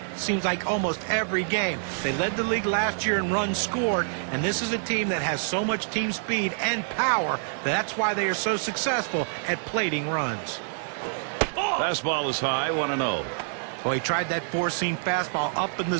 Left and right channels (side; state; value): left; silent; digital silence